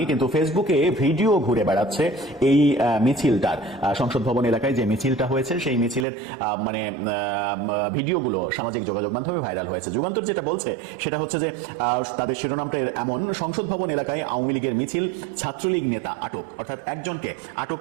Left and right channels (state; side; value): drops out; left; at 6.1 s